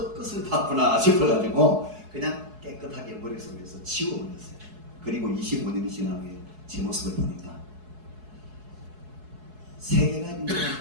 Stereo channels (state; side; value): late; left; 4.7 ms